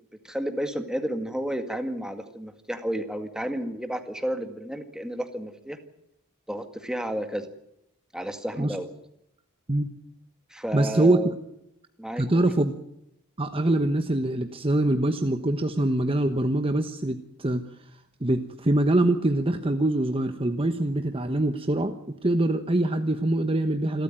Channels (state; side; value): normal; both; correlation 0.80